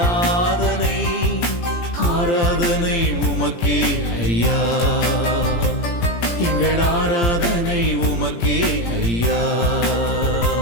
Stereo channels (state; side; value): late; right; 17 ms